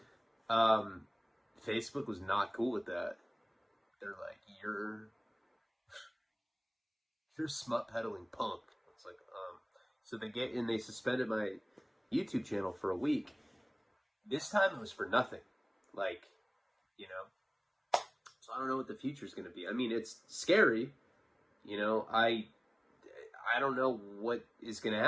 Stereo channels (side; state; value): both; identical; correlation 1.00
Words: Facebook was not cool with that. They're like, you're smut peddling punk. It's like, so they suspended my YouTube channel for a week. This time it was for nothing. Like, so I don't know what the future is going to be. I mean, it's scary. I don't know what is going to